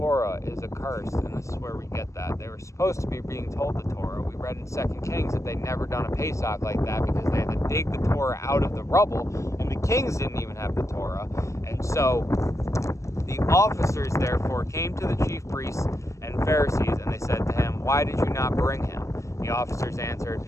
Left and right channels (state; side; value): late; right; 0.15 ms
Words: is accursed." And this is where we get that. They were supposed to be being told the Torah. We read in 2 Kings that they'd never done a Pesach like that because they had to dig the Torah out of the rubble, and the kings didn't even have the Torah. And so the officers therefore came to the chief priests and Pharisees, and they said to him, "Why did you not bring him?" The officers answered,